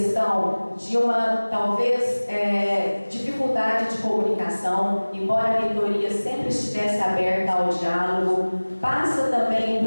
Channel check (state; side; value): inverted; both; correlation -1.00